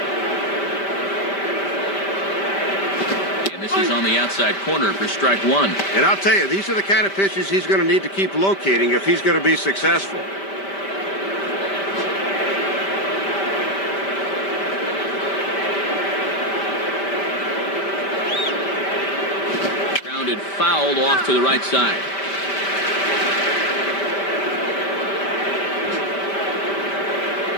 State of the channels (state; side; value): late; right; 5.1 ms